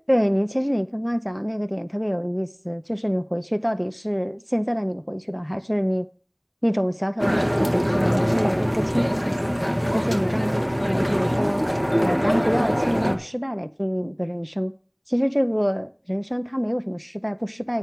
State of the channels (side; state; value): both; identical; correlation 1.00